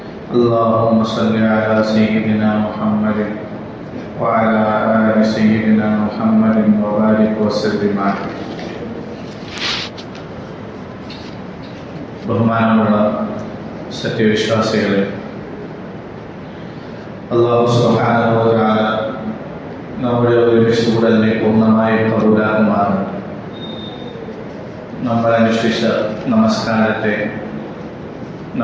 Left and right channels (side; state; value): both; identical; correlation 1.00